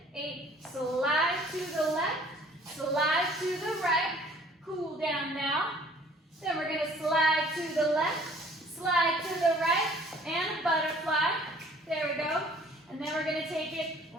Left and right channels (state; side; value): normal; both; correlation 0.54